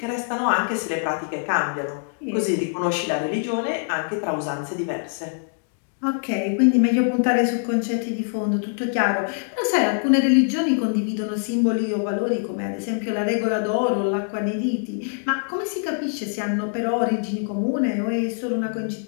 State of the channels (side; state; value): right; silent; digital silence